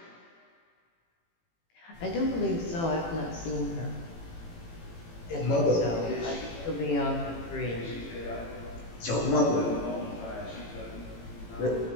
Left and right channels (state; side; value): late; right; 18 ms